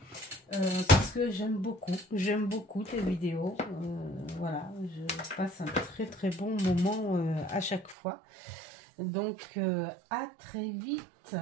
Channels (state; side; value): drops out; left; at 8.0 s